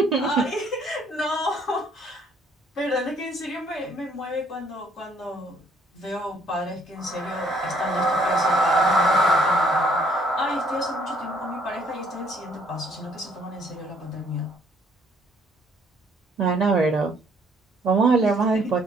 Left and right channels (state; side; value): normal; both; correlation 0.64